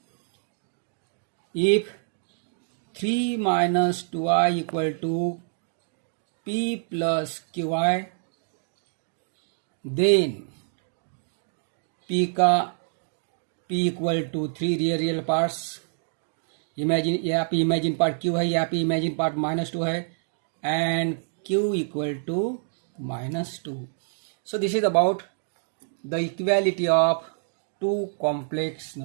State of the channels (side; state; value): left; silent; digital silence